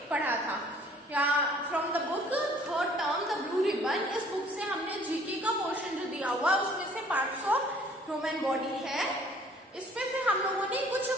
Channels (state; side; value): normal; both; correlation 0.56